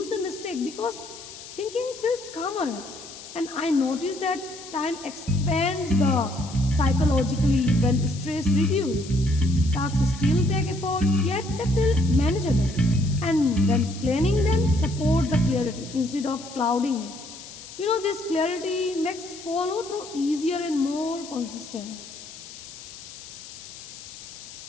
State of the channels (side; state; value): left; noise; hiss, 15 dB below the sound